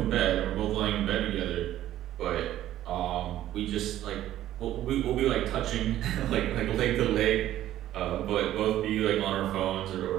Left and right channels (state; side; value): quieter; left; 13.1 dB